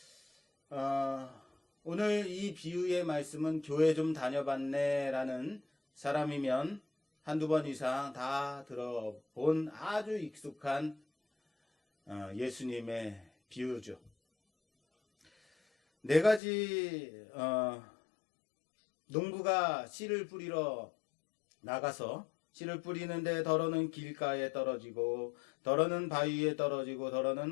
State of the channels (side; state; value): right; drops out; at 16.4 s